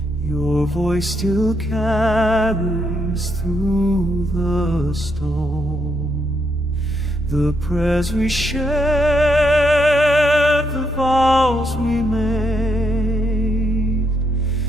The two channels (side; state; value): both; normal; correlation 0.78